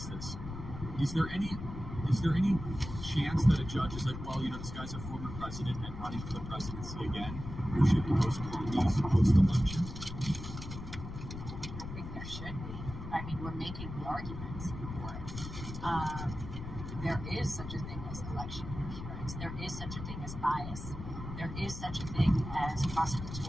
this. Is there any chance that a judge is like, well, this guy's a former president and running for the presidency again, we should postpone these post-election? I think there should be. I mean, we're making the arguments for it. There is such a thing as election interference. There is such a thing as bias. There is such a thing as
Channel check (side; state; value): left; noise; rumble, 9 dB below the sound